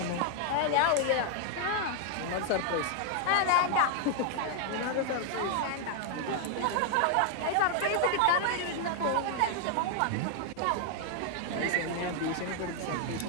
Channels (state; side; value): different; both; correlation 0.00